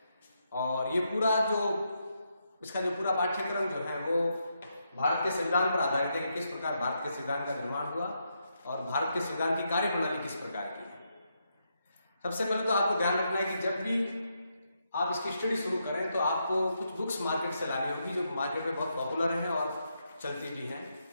और ये पूरा इसका जो पूरा पाठ्यक्रम जो है वो भारत के संविधान पर आधारित है कि किस प्रकार भारत के संविधान का निर्माण हुआ और भारत के संविधान की कार्यप्रणाली किस प्रकार की है। सबसे पहले तो आपको ध्यान रखना है कि जब भी आप इसकी स्टडी शुरू करें तो आपको कुछ बुक्स मार्केट से लानी होगी, जो मार्केट में बहुत पॉपुलर हैं और चलती भी हैं।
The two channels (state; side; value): inverted; both; correlation -0.81